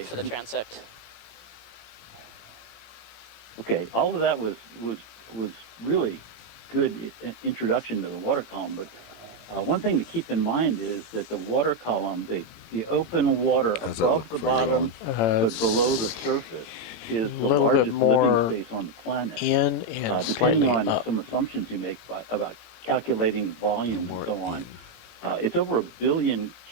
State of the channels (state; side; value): late; right; 18 ms